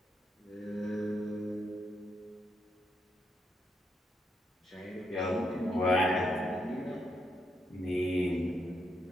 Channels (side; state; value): both; normal; correlation 0.79